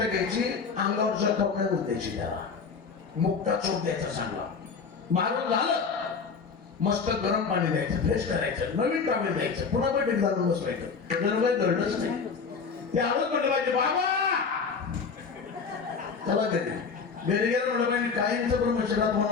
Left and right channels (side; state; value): right; quieter; 5.4 dB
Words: घ्यायची, अंगावर जखम द्यायची, त्याला मुक्ता चोप द्यायचा चांगला. मारून झालं, मस्त गरम पाणी द्यायचं, फ्रेश करायचं, नवीन कामे द्यायचं, पुन्हा बैठक घालून बसवायचं. जर काही घडलंच नाही, ते आलोच म्हटलं पाहिजे, बाबा चला घरी. घरी गेलं म्हटलं पाहिजे, काहींचं ब्रह्मचर्यात